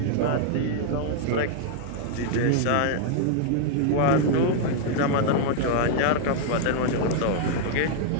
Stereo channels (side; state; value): both; different; correlation -0.01